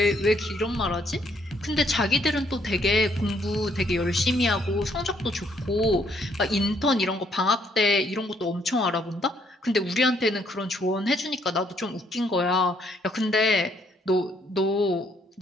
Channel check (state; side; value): normal; both; correlation 0.69